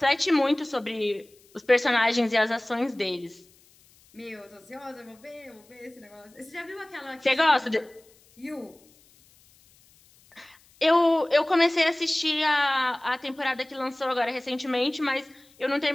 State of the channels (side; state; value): left; noise; hiss, 30 dB below the sound